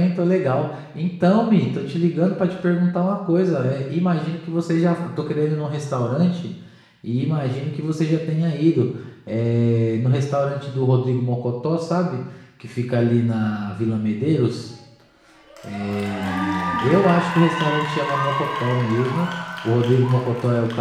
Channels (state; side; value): identical; both; correlation 1.00